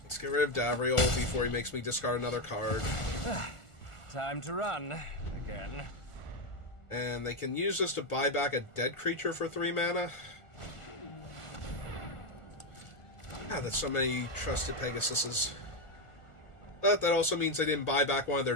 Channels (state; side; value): late; right; 1.4 ms